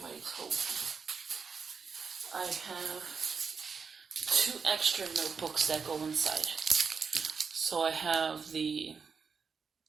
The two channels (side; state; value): left; quieter; 5.6 dB